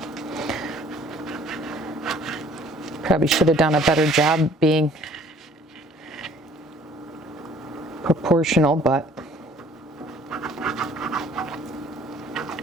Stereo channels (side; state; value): both; normal; correlation 0.56